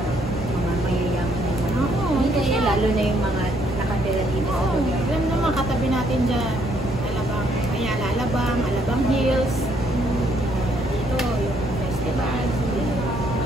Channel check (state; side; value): normal; both; correlation 0.69